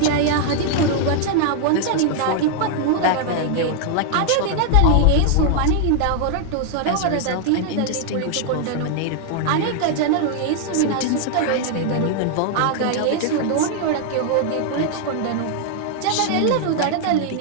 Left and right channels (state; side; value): different; both; correlation -0.01